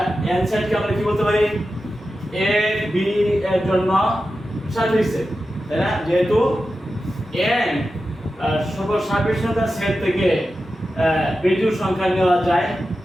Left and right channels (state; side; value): normal; both; correlation 0.92